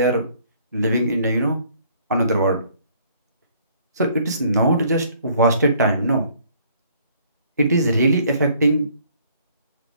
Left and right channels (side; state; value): both; inverted; correlation -0.61